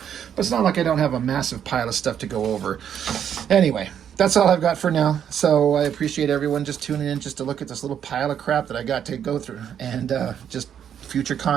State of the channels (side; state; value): left; quieter; 8.9 dB